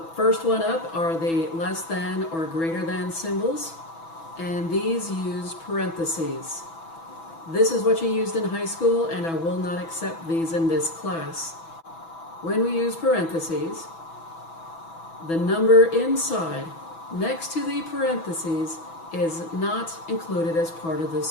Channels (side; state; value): right; late; 6.1 ms